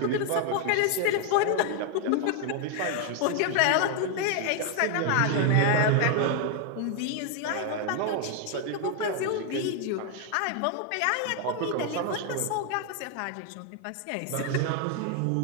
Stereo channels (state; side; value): different; both; correlation 0.00